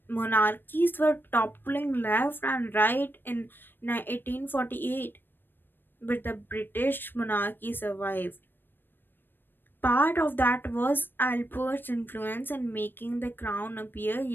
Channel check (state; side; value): late; right; 0.096 ms